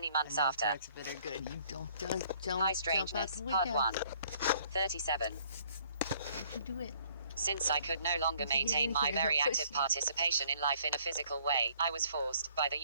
months after. High Strangeness, Part 1. 37. You do it. Since I could no longer maintain my very active participation in life in a physical way, I was forced, by the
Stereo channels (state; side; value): inverted; both; correlation -0.61